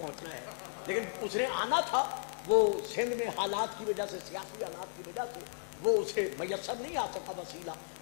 ہے، لیکن اس نے آنا تھا، وہ سندھ میں حالات کی وجہ سے، سیاسی حالات کی وجہ سے وہ اسے میسر نہیں آ سکا وسیلہ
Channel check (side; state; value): right; silent; digital silence